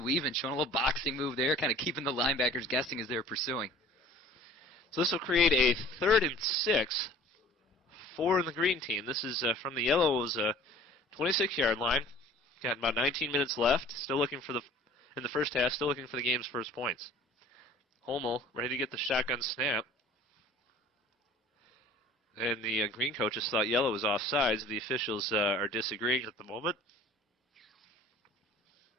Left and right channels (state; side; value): normal; both; correlation 0.48